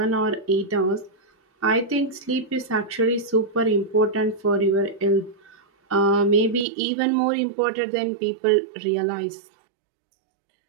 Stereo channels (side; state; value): left; drops out; at 6.7 s